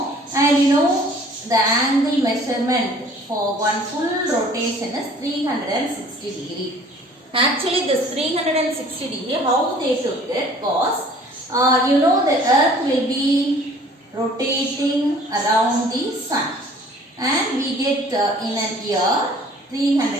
And you know the angle measurement for one full rotation is 360 degree. Actually this 360 degree, how they took it was, you know the earth will be rotating around the sun. And we get in a year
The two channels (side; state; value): both; normal; correlation 0.52